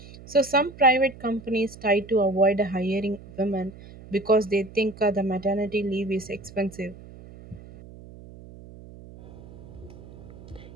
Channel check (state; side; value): noise; right; hum, 18 dB below the sound